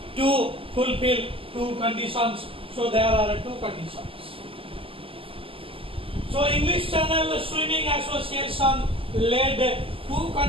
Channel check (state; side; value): late; left; 0.26 ms